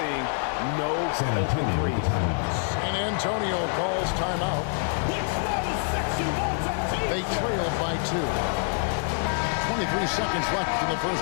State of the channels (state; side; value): silent; right; 58 dB below the other